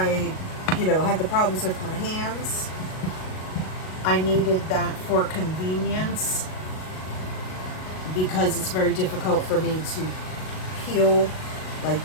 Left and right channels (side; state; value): right; late; 38 ms